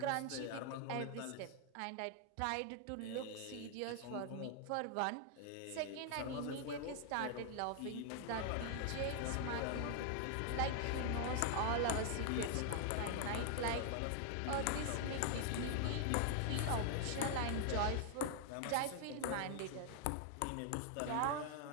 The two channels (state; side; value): different; both; correlation 0.00